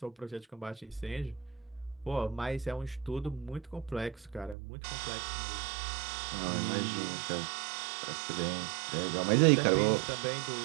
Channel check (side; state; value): left; drops out; at 4.5 s